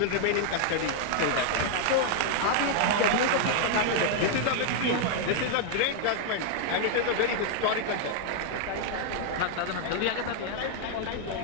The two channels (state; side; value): different; both; correlation 0.00